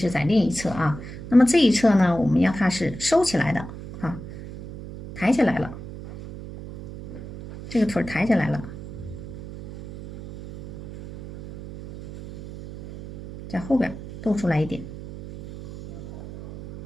在另一侧啊。那么这一侧呢，我们让它是收起来的啊，抬起来了，这个腿抬起来了，在后边露出来一点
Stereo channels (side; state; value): right; noise; hum, 12 dB below the sound